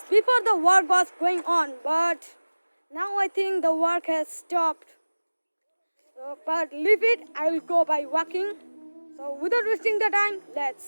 before the work was going on, but now I think the work has stopped. So, but leave it, I will go by walking. So without wasting the time,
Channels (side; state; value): both; inverted; correlation -1.00